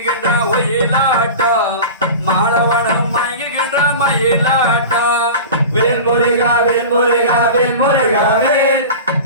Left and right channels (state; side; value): inverted; both; correlation -0.32